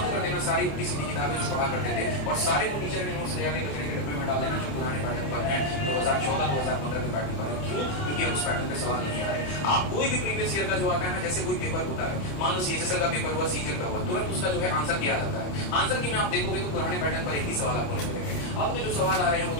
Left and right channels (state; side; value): late; right; 28 ms